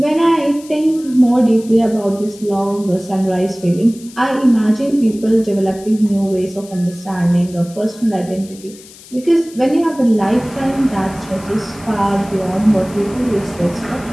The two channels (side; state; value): left; noise; hiss, 21 dB below the sound